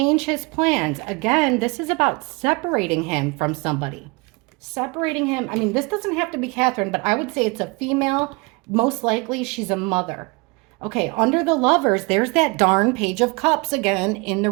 his plans. Again, this is about separating him from somebody. Separating him. I mean, this doesn't have to be Catherine, but I would say it's a female. Most likely she's a mother. Okay, under the Lovers, there's that darn Page of Cups again in the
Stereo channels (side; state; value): left; quieter; 27.7 dB